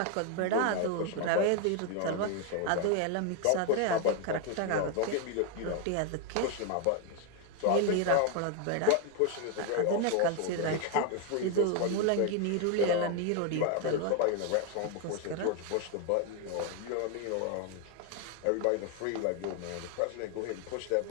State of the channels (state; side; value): different; both; correlation 0.01